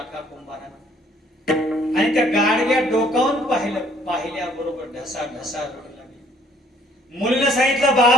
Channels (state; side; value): normal; both; correlation 0.61